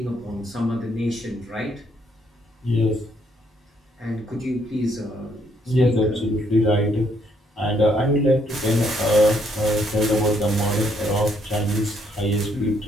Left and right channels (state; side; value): normal; both; correlation 0.70